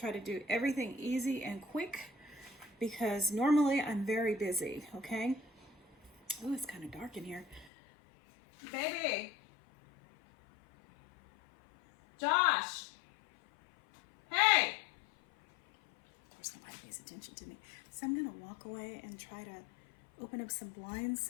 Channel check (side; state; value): right; drops out; at 7.7 s